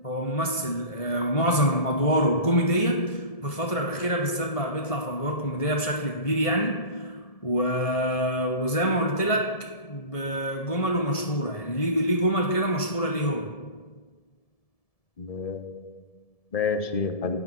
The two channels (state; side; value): late; right; 1.7 ms